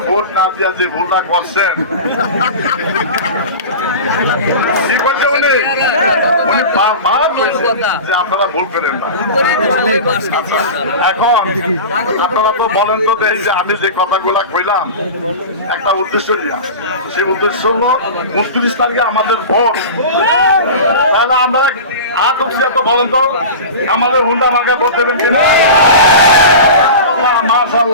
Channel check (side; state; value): both; inverted; correlation -0.31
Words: ভোট না দিয়া যে ভুলটা করছেন, কি করছে উনি বারবার যে আপনারা ভুল করেন না। এখন আপনারা তো বলেন তো যে আমি যে কথাগুলা কইলাম একটা উদ্দেশ্য নিয়ে, সেই উদ্দেশ্য হলো 29 তারিখে আমাদের ভোট। তাহলে আপনারা তো বলেন তো আমাদের হুন্ডা মার্কা ভোট দেবেন কিনা?